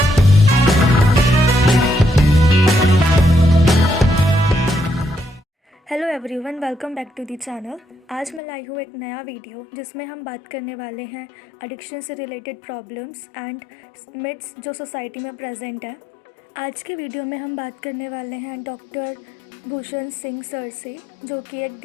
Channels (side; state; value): right; drops out; at 8.4 s